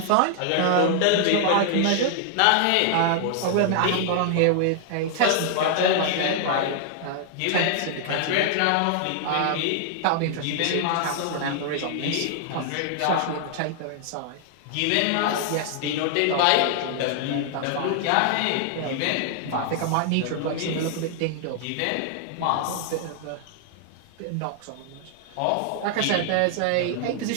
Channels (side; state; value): both; different; correlation 0.00